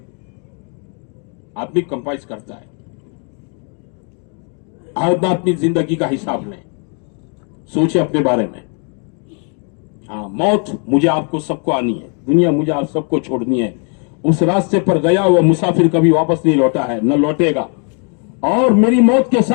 आदमी कंपाइज करता है। आदमी अपनी जिंदगी का हिसाब लें, सोचे अपने बारे में। हाँ, मौत मुझे आपको सबको आनी है, दुनिया मुझे आप सबको छोड़नी है। उस रास्ते पर गया हुआ मुसाफिर कभी वापस नहीं लौटा है, न लौटेगा, और मेरी मौत के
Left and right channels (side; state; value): right; quieter; 39.7 dB